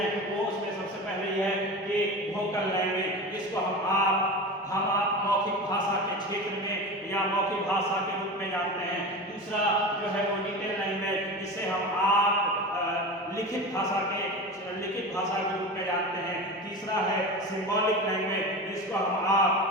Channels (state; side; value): normal; both; correlation 0.28